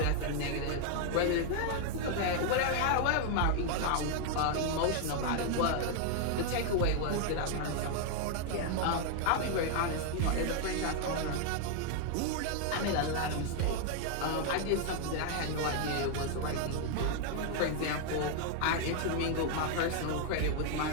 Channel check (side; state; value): both; different; correlation 0.00